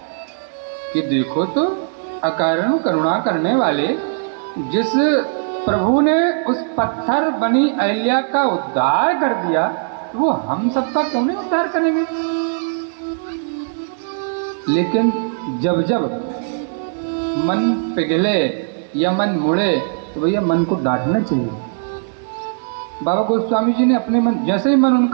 कि देखो तो अकारण करुणा करने वाले जिस प्रभु ने उस पत्थर बनी अहिल्या का उद्धार कर दिया, वो हम सबका क्यों नहीं उद्धार करेंगे। लेकिन जब जब मन पिघले या मन मुड़े तो भैया मन को डांटना चाहिए। बाबा गोस्वामी जी ने अपने मन, जैसे ही मन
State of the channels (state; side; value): silent; left; digital silence